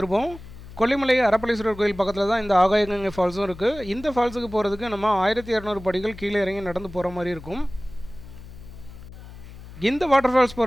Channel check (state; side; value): noise; left; hum, 16 dB below the sound